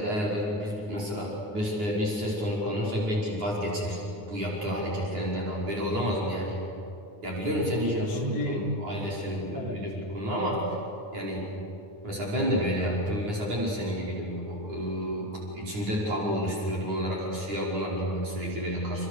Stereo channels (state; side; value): late; left; 9.6 ms